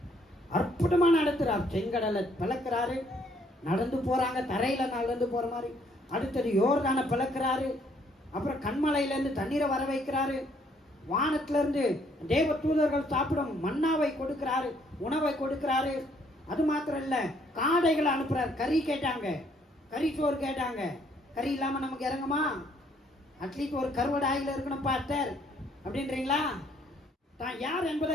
அற்புதமா நடத்துறார். செங்கடலை பிளக்கிறாரு, நடந்து போறாங்க, தரையில நடந்து போற மாதிரி. அடுத்தது யோர்தானை பிளக்கிறாரு. அப்புறம் கண்மலையிலேருந்து தண்ணீரை வர வைக்கிறாரு. வானத்திலிருந்து தேவ தூதர்கள் சாப்பிடும் மன்னாவை கொடுக்கிறாரு, உணவை கொடுக்கிறாரு. அது மாத்திரம் இல்ல, காடைகளை அனுப்புறாரு. கறி கேட்டாங்க, கறி சோறு கேட்டாங்க. கறி இல்லாம நமக்கு இறங்குமா? அட்லீஸ்ட் ஒரு கருவடை ஆயில் இருக்கணும் பாஸ்டர் அப்படின்றீங்களா? தான் யார்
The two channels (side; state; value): both; normal; correlation 0.66